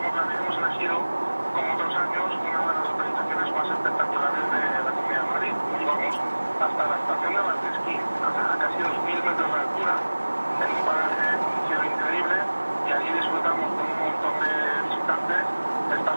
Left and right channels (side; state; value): both; inverted; correlation -1.00